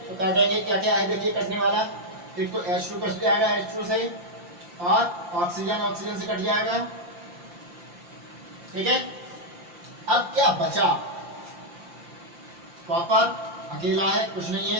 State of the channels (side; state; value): left; late; 5.7 ms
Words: काटेंगे, क्या क्या है देखिए कटने वाला। एक तो H2 कट जाएगा H2 से, और ऑक्सीजन से कट जाएगा। ठीक है, अब क्या बचा, कॉपर अकेला है, कुछ नहीं